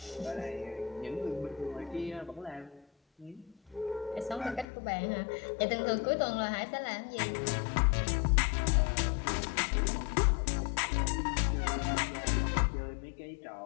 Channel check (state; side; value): drops out; right; at 4.7 s